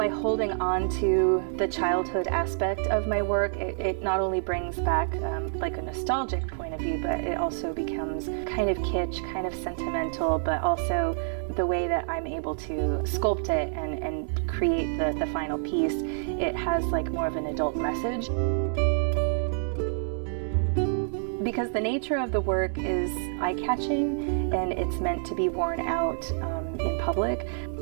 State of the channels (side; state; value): left; silent; digital silence